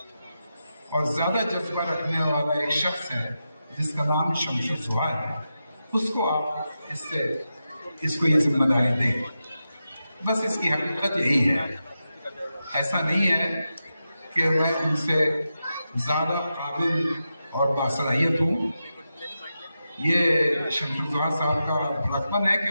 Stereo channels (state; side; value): inverted; both; correlation -0.90